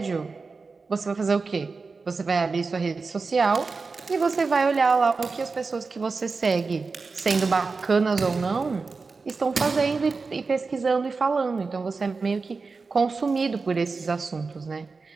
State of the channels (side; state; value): left; quieter; 4.3 dB